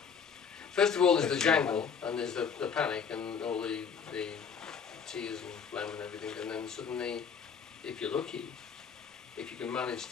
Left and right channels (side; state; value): right; quieter; 6.5 dB